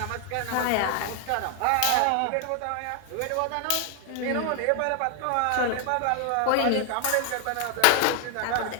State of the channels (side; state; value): both; different; correlation 0.00